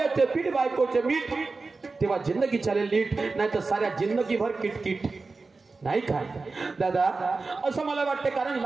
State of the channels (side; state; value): left; quieter; 3.9 dB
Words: पीठ बायकोचे मीठ, तेव्हा जिंदगी चालेल नीट, नाही तर साऱ्या जिंदगीभर किटकिट नाही काय दादा। असं मला वाटतं, कारण